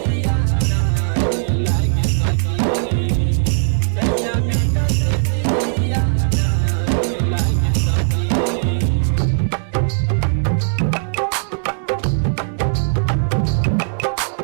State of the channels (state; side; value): silent; left; digital silence